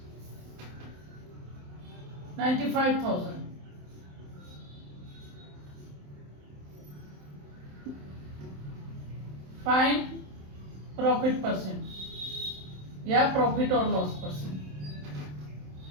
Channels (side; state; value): left; late; 27 ms